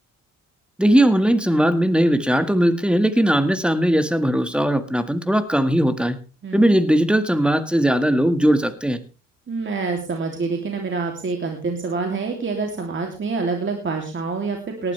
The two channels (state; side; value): normal; both; correlation 0.86